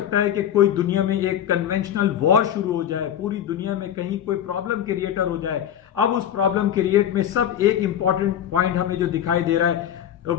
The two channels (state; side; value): quieter; right; 10.1 dB